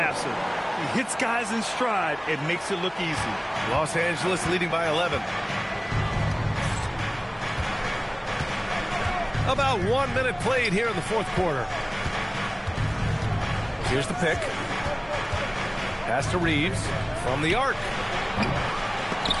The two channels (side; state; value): both; identical; correlation 1.00